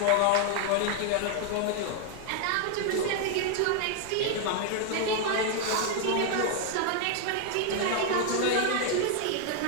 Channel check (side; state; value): both; different; correlation 0.00